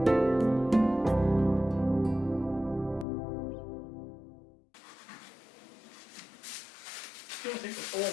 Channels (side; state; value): right; drops out; at 3.1 s